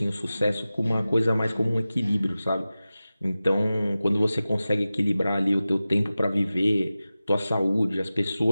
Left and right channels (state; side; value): inverted; both; correlation -0.95